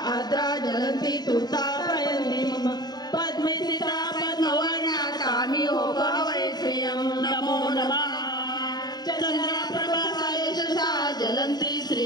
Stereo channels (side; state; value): right; late; 0.20 ms